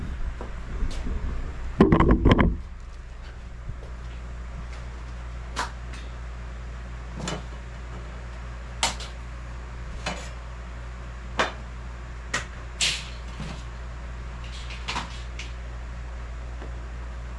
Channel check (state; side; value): identical; both; correlation 1.00